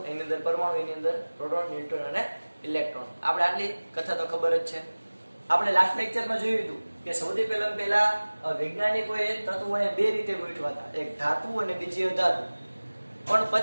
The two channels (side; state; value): both; inverted; correlation -1.00